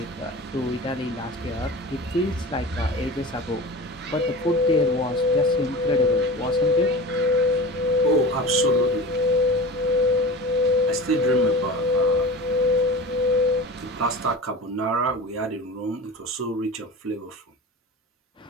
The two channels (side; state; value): both; normal; correlation 0.33